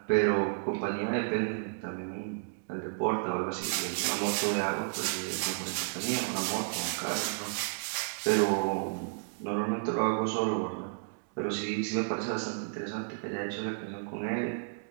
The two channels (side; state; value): left; silent; digital silence